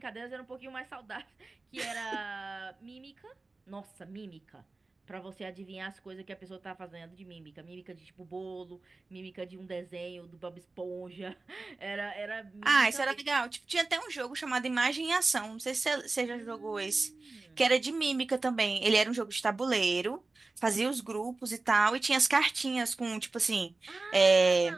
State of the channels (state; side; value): quieter; left; 3.5 dB